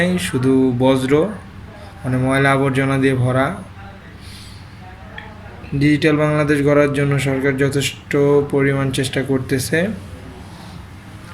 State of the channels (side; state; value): both; identical; correlation 1.00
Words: শুধু বজ্র, মানে ময়লা আবর্জনা দিয়ে ভরা। ডিজিটাল বাংলাদেশ গড়ার জন্য সরকার যথেষ্ট পরিমাণ চেষ্টা করতেছে।